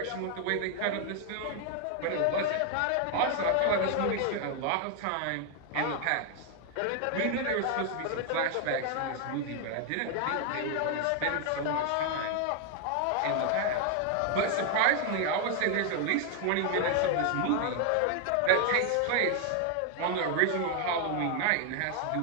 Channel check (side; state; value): both; different; correlation 0.00